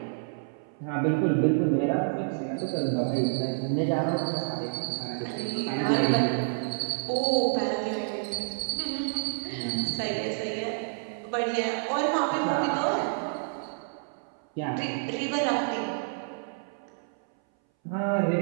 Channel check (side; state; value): left; silent; 59 dB below the other